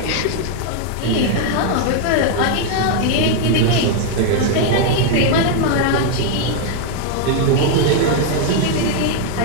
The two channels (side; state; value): both; different; correlation 0.00